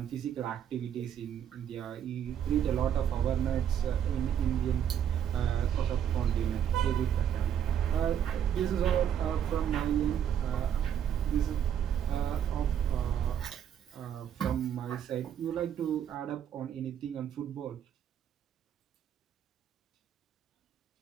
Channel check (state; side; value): quieter; left; 9.3 dB